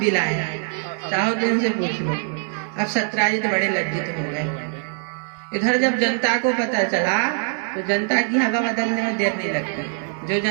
लाए हैं, चाहो तो इनसे पूछ लो। अब सत्यजित बड़े लज्जित हो गए। इधर जब जनता को पता चला तो जनता की हवा बदलने में देर नहीं लगती। जो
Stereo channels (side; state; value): left; silent; 60 dB below the other